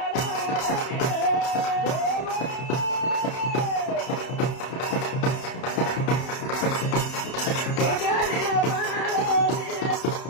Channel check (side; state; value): right; late; 31 ms